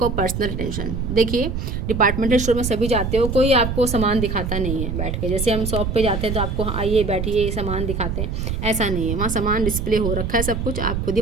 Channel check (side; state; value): right; noise; rumble, 3 dB below the sound